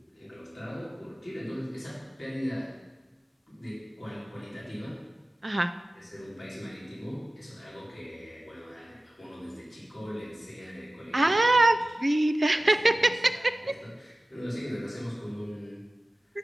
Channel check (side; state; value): both; normal; correlation 0.97